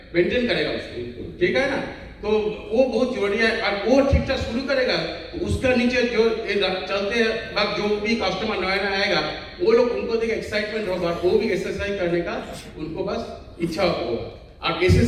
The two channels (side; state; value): both; identical; correlation 1.00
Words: मेंटेन करेगा उसको, ठीक है ना। तो वो बहुत जरूरी है। और वो ठीक ठाक शुरू करेगा तो उसका नीचे जो चलते वक्त जो भी कस्टमर नया आएगा, वो लोग, उनको देख एक्साइटमेंट होगा, वो भी SSI करने का उनको बस इच्छा होगा। और